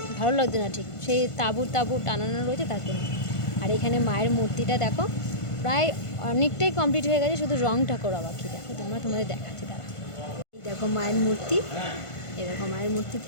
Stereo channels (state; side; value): late; right; 1.5 ms